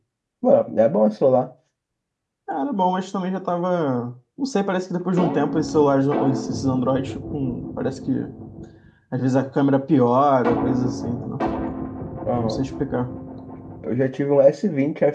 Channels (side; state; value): both; identical; correlation 1.00